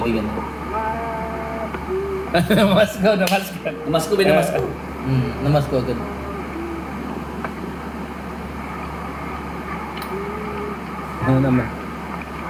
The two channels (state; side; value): identical; both; correlation 1.00